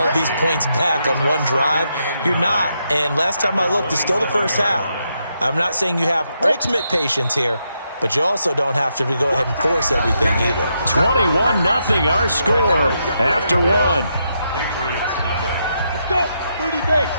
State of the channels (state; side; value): inverted; both; correlation -0.80